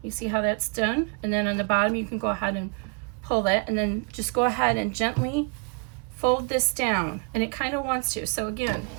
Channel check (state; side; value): quieter; left; 34.3 dB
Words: You see how that's done? And then on the bottom you can go ahead and pull that, and then just go ahead and gently fold this down, and it kind of wants to. So again,